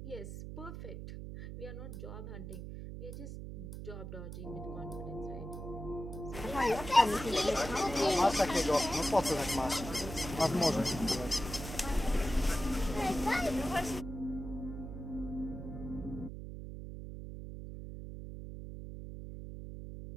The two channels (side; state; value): right; noise; hum, 9 dB below the sound